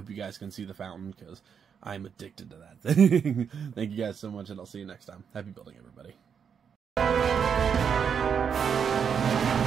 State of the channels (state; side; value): quieter; left; 7.1 dB